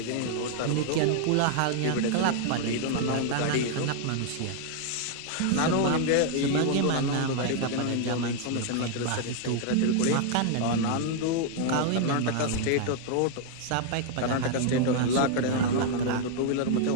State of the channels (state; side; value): different; both; correlation 0.00